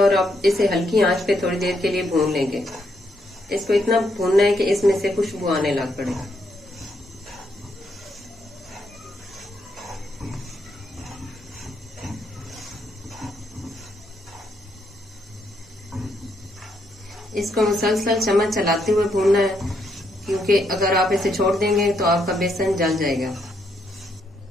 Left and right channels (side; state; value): both; normal; correlation 0.76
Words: अब इसे हल्की आंच पे थोड़ी देर के लिए भून लेंगे। इसको इतना भूनना है कि इसमें से खुशबू आने लग पड़े। इसको मुसलसल चम्मच चलाते हुए भूनना है, क्योंकि अगर आप इसे छोड़ देंगे तो आपका बेसन जल जाएगा।